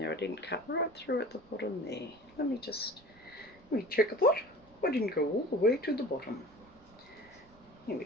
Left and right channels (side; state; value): right; noise; rumble, 26 dB below the sound